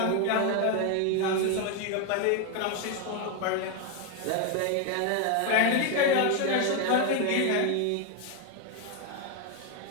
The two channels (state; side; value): different; both; correlation 0.01